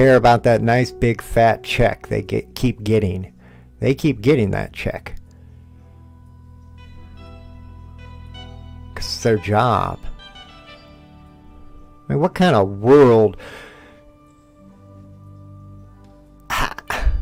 about that nice big fat check they keep getting. They keep getting that check. Because it's their job. I mean, what kind of world...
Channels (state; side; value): identical; both; correlation 1.00